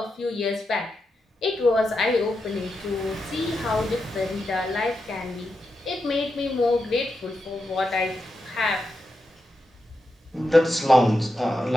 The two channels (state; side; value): normal; both; correlation 0.87